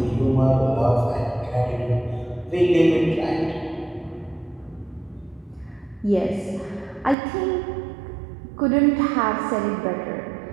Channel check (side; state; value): left; drops out; at 7.2 s